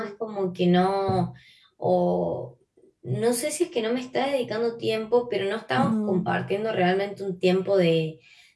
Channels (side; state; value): both; identical; correlation 1.00